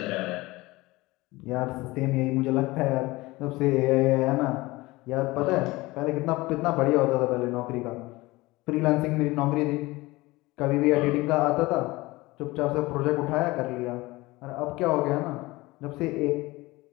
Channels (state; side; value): quieter; right; 20.8 dB